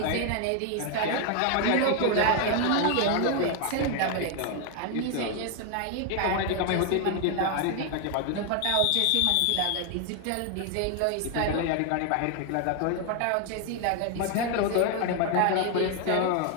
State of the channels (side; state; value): both; different; correlation 0.01